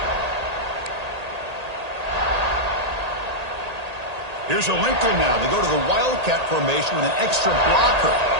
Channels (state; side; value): late; left; 1.8 ms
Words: Here's a wrinkle now. They go to the Wildcat formation with an extra blocker.